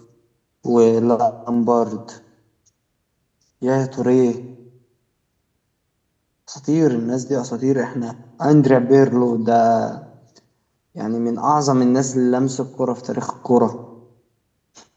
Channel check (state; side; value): identical; both; correlation 1.00